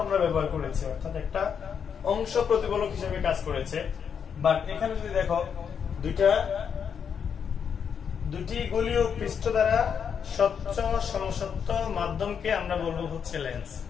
আমরা ব্যবহার করেছি, অর্থাৎ একটা অংশ প্রতিফলক হিসেবে কাজ করেছে। বাট এখানে যদি দেখো দুটি গোলীয় পৃষ্ঠ দ্বারা স্বচ্ছ সমসত্ব মাধ্যমকে আমরা বলবো হচ্ছে লেন্স।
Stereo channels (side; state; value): right; quieter; 7.2 dB